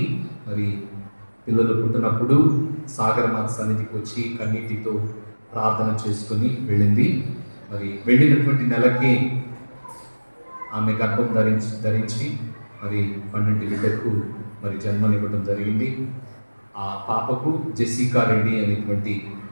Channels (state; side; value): inverted; both; correlation -1.00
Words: మరి పిల్లలు పుట్టినప్పుడు సాగరమాత సన్నిధికి వచ్చి కన్నీటితో ప్రార్థన చేసుకుని వెళ్ళింది. మరి వెళ్ళినటువంటి నెలకి ఆమె గర్భం ధరించి మరి 12 బిడ్డకు మరి జన్మనివ్వడం జరిగింది. ఆ పాపకు జెసికా రెడ్డి అనేటువంటి